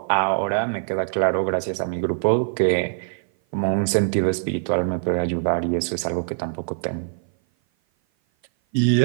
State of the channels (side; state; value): left; silent; 56 dB below the other